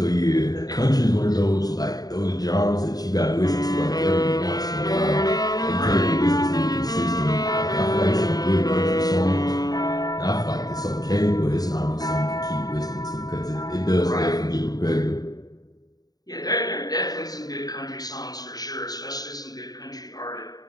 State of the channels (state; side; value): late; right; 0.18 ms